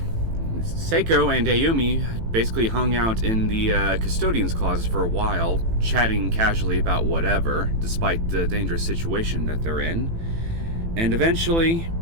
Naomi basically hung out in the custodian's closet for a while, chatting casually about whatever, despite the dangerous situation that they're in. And eventually,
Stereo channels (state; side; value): late; left; 18 ms